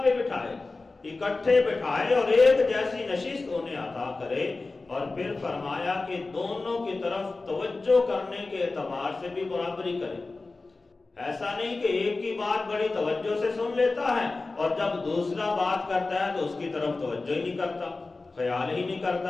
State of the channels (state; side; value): quieter; right; 3.6 dB